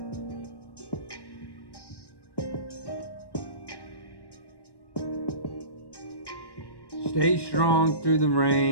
Stay strong through the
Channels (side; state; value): right; late; 1.1 ms